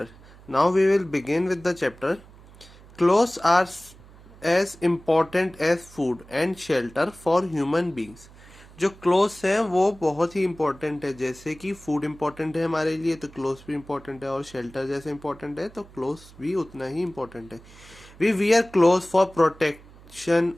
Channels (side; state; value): right; noise; hum, 22 dB below the sound